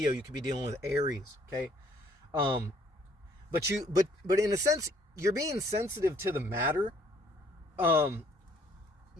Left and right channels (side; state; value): both; normal; correlation 0.62